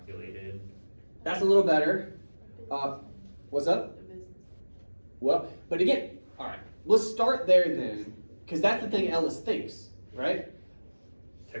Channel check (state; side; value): inverted; both; correlation -1.00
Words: That's a little better. What's up? The business. Well, but again, all right, let's start there then, because that's the thing Ellis thinks, right?